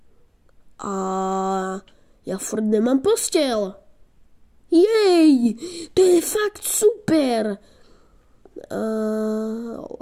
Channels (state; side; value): identical; both; correlation 1.00